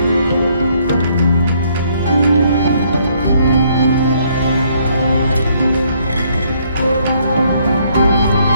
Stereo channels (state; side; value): inverted; both; correlation -0.68